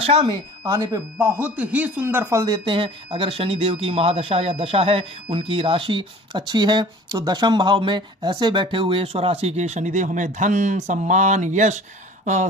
में आने पे बहुत ही सुंदर फल देते हैं। अगर शनिदेव की महादशा या दशा है, उनकी राशि अच्छी है, तो दशम भाव में ऐसे बैठे हुए स्वराशि के शनिदेव हमें धन, सम्मान, यश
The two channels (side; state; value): both; normal; correlation 0.45